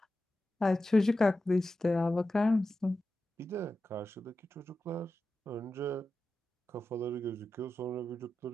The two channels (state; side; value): normal; both; correlation 0.92